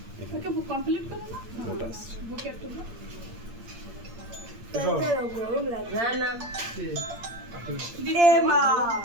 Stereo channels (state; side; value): late; left; 8.7 ms